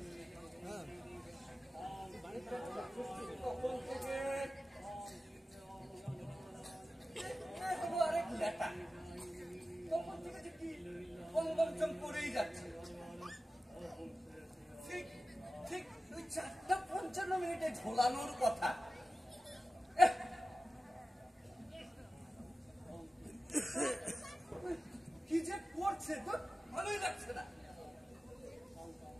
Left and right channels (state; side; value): normal; both; correlation 0.94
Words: করেই যাচ্ছে, ঠিক ঠিক ওই 4:55 ঝোলানোর কথা। কি যে করছে তো ভালোই লাগছে না।